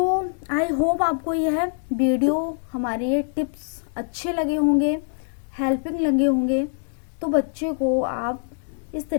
आई होप आपको यह वीडियो, हमारे ये टिप्स अच्छे लगे होंगे, हेल्पिंग लगे होंगे। तो बच्चे को आप इस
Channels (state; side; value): silent; right; 63 dB below the other